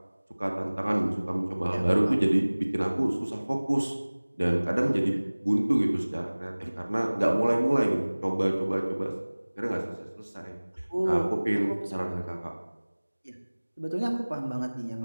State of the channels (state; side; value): inverted; both; correlation -1.00